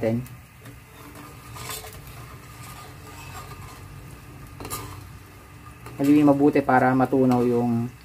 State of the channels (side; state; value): both; identical; correlation 1.00